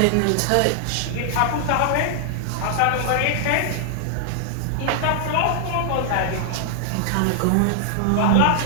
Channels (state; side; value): different; both; correlation -0.01